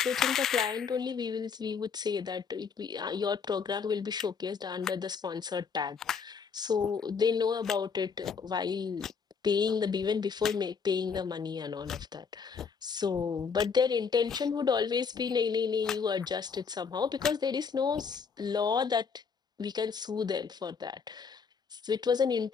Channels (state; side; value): quieter; right; 5.9 dB